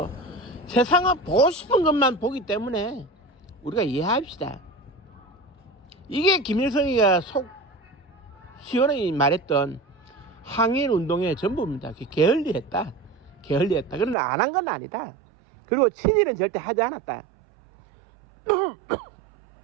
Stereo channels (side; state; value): left; drops out; at 14.2 s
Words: 세상은 보고 싶은 것만 보기 때문에 우리가 이해합시다. 이게 김일성이가 속 시원하게 말했던 항일 운동의 전부입니다. 게을리했다. 게을리했다. 그러나 안 한 건 아니다. 그리고 친일은 절대 하지 않았다.